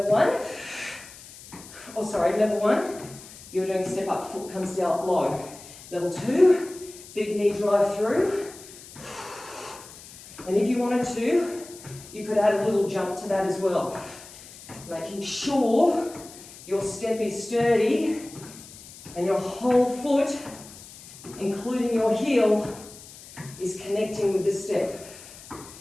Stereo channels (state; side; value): noise; left; hiss, 18 dB below the sound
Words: one, level one, you're doing step up, foot comes down low. Level two, big knee drive through. And if you wanted to, you could add a little jump to that as well. Making sure your step is sturdy and your whole foot, including your heel, is connecting with the step.